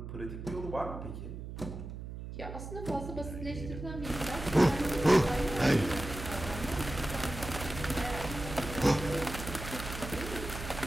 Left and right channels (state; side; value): noise; right; hum, 9 dB below the sound